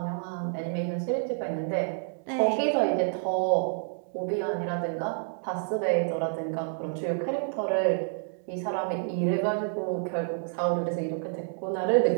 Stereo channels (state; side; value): silent; left; digital silence